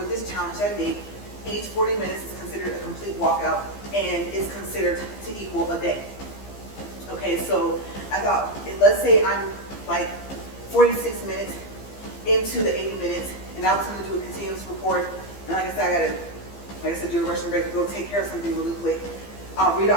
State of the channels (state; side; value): late; right; 15 ms